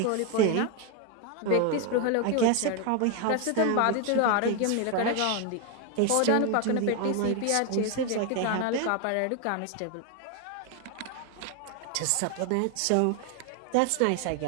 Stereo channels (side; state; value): both; different; correlation 0.01